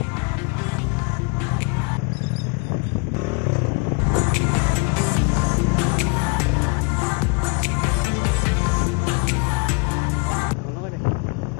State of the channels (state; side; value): quieter; right; 31.8 dB